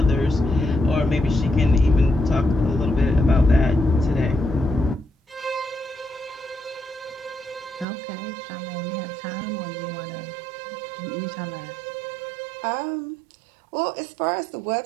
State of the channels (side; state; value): left; drops out; at 7.9 s